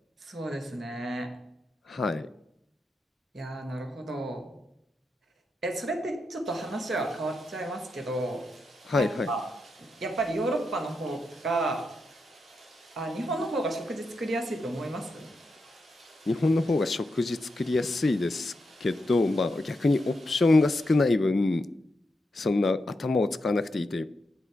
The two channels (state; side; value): normal; both; correlation 0.85